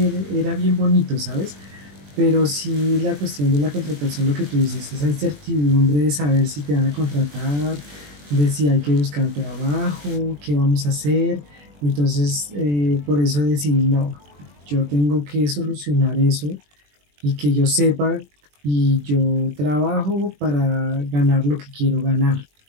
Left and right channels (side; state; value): left; late; 21 ms